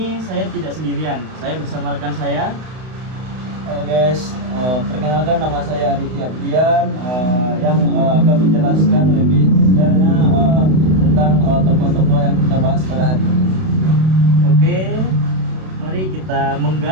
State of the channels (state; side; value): late; left; 32 ms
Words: saya tidak sendirian, saya bersama rekan saya. Halo guys, perkenalkan nama saya Arifi Abdian yang akan menjelaskan lebih detailnya tentang tokoh-tokoh yang kita bahas pada hari ini. Oke, mari kita